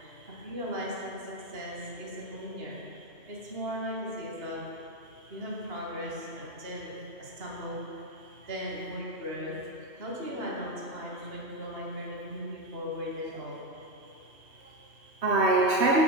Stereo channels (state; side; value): late; left; 2.8 ms